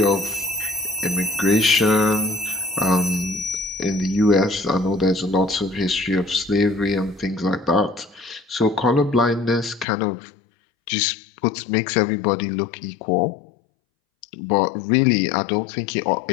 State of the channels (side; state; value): right; drops out; at 9.9 s